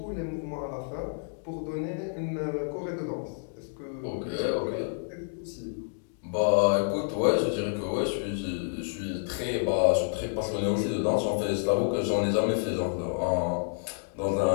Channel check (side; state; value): right; silent; digital silence